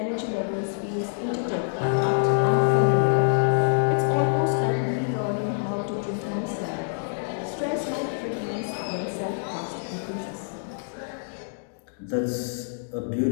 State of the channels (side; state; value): right; silent; digital silence